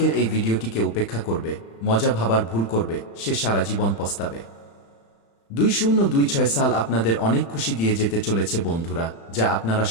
এই ভিডিওটিকে উপেক্ষা করবে, মজা ভাবার ভুল করবে, সে সারা জীবন পস্তাবে। 2026 সাল আপনাদের অনেক খুশি দিয়ে যেতে চলেছে বন্ধুরা, যা আপনারা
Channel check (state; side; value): late; right; 35 ms